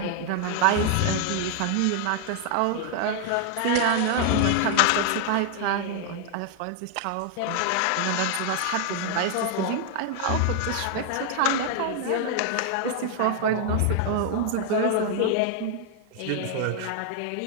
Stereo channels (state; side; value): different; both; correlation 0.00